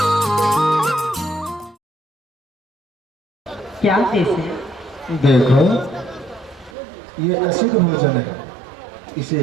क्या कैसे? देखो, ये असिद्ध भोजन है, इसे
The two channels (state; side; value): drops out; left; at 6.7 s